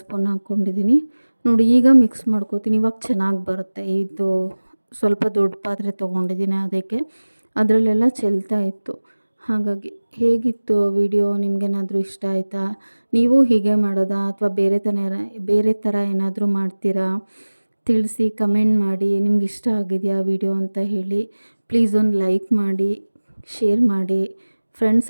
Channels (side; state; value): both; inverted; correlation -1.00